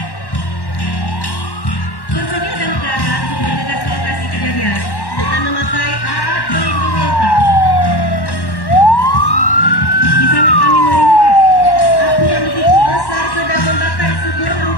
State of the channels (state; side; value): late; right; 1.1 ms